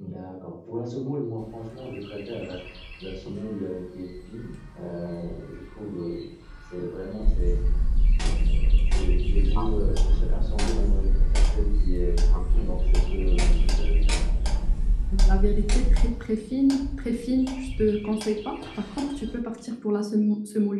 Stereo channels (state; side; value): identical; both; correlation 1.00